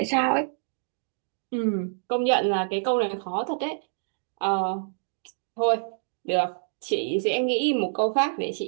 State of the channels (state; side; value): silent; left; digital silence